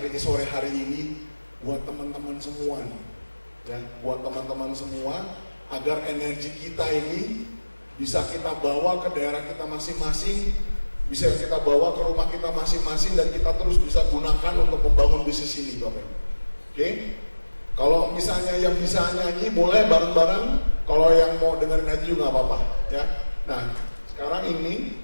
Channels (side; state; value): both; inverted; correlation -1.00